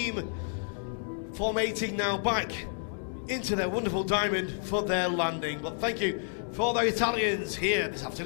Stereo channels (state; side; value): silent; right; digital silence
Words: formating now back into their wonderful Diamond for their landing. But thank you for the Italians here this